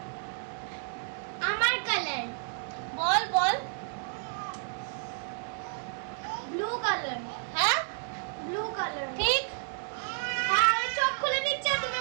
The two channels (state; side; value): silent; left; 57 dB below the other